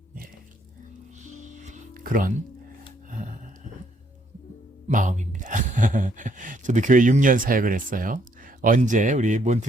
그런 마음입니다. 저도 교회 6년 사역을 했어요. 언제 우리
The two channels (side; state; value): both; normal; correlation 0.70